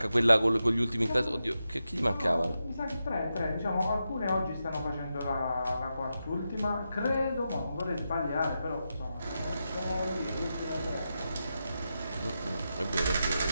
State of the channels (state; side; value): inverted; both; correlation -0.88